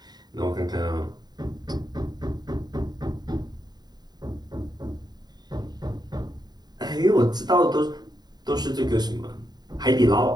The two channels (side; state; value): left; late; 0.20 ms